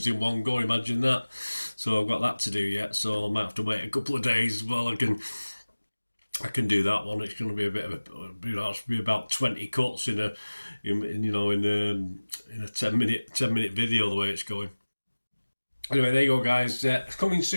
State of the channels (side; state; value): both; inverted; correlation -1.00